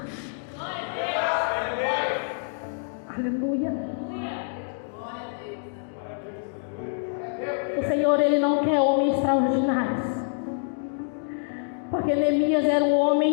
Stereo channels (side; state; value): right; silent; digital silence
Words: Aleluia. O Senhor, Ele não quer homens extraordinários, porque Neemias era um